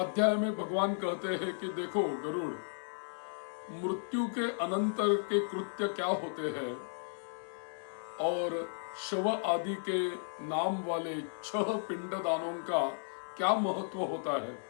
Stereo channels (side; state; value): right; silent; 55 dB below the other